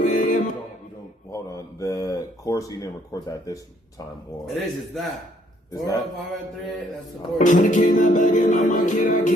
a.m. We don't. Hold on. The chorus you didn't record that this time, or It is, it's that. Is 405 at 3, that's the chorus. 100K not bagging on my kid, I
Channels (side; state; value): both; normal; correlation 0.67